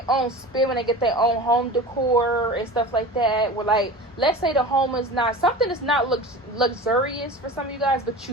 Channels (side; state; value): both; normal; correlation 0.34